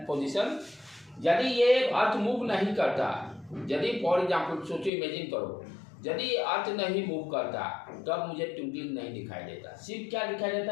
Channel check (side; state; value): right; drops out; at 4.9 s